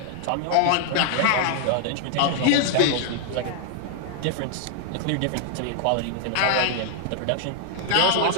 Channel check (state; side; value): different; both; correlation -0.01